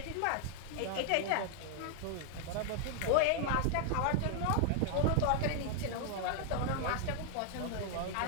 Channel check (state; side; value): different; both; correlation 0.00